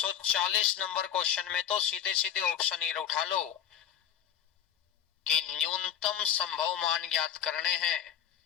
नंबर क्वेश्चन में तो सीधे सीधे ऑप्शन ये उठा लो कि न्यूनतम संभव मान ज्ञात करने हैं।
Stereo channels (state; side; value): quieter; right; 9.6 dB